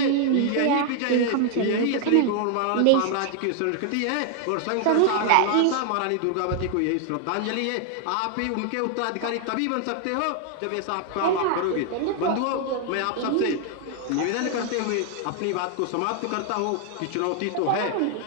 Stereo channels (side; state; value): both; different; correlation 0.00